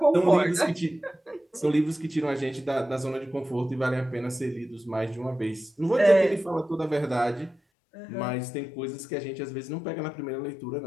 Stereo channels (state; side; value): drops out; right; at 7.6 s